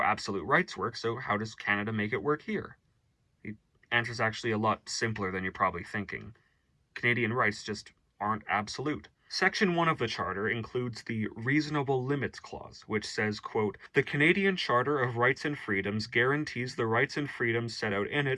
absolute rights work, so how does Canada make it work here? The answer's actually a lot simpler than you're probably thinking. Canadian rights just aren't absolute. Section 1 of the Charter includes the Reasonable Limits Clause, which says, quote, the Canadian Charter of Rights and Freedoms guarantees the rights and freedoms set out in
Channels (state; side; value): identical; both; correlation 1.00